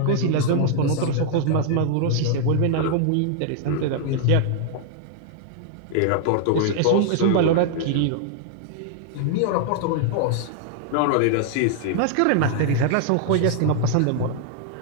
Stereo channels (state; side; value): different; both; correlation 0.00